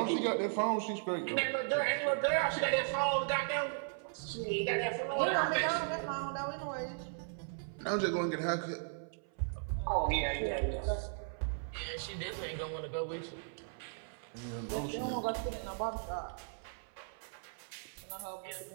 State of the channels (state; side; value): silent; left; 53 dB below the other